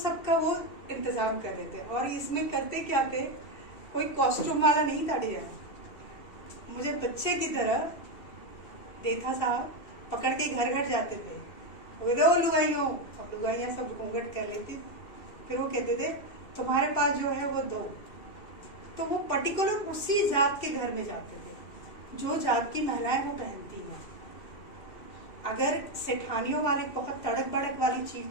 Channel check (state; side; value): late; right; 2.7 ms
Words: वो इंतजाम कर रहे थे। और इसमें करते क्या थे, कोई कॉस्ट्यूम वाला नहीं था डिजाइन, मुझे बच्चे की तरह देथा साहब पकड़ के घर घर जाते थे, वो दो लुगाइयों, अब लुगाइयाँ सब घूंघट कर लेती, फिर वो कहते थे तुम्हारे पास जो है वो दो, तो वो पर्टिकुलर उसी जात के घर में जाते थे जो जात की महिलाएं वो पहनती हैं। अगर सेठानियों वाले बहुत तड़क भड़क वाली